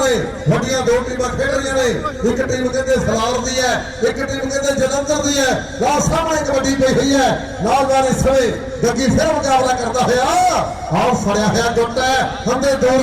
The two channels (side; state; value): both; identical; correlation 1.00